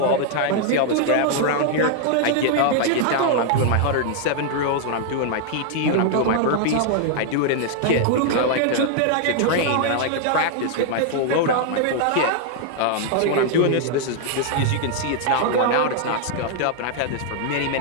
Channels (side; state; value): both; different; correlation 0.00